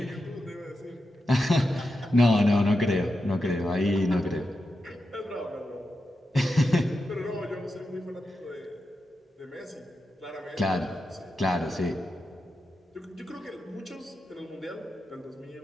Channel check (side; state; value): both; normal; correlation 0.89